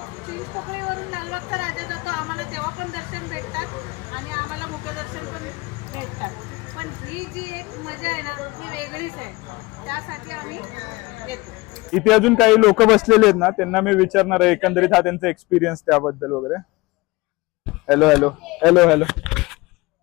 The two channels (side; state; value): right; quieter; 22.9 dB